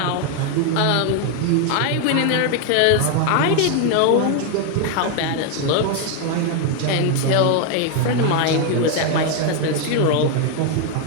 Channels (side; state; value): both; different; correlation 0.01